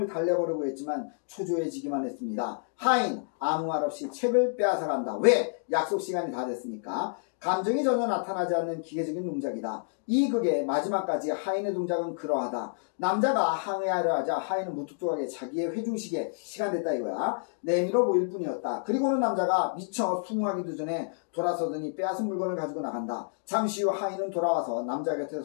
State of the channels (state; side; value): silent; right; digital silence